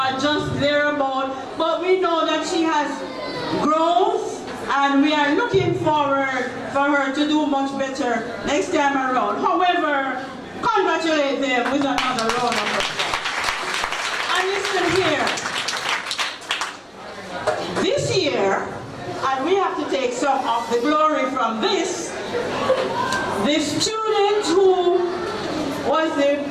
just thereabout. But we know that she has growth, and we are looking forward for her to do much better next time around. However, congratulate them with another round of applause. And listen here, this year, and we have to take some of the glory from this, the student who was the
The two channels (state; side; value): identical; both; correlation 1.00